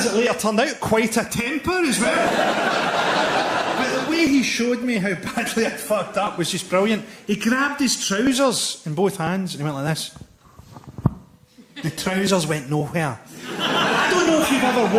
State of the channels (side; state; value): both; identical; correlation 1.00